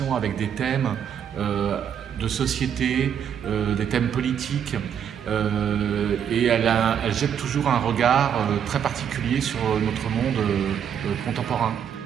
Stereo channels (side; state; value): left; quieter; 8.5 dB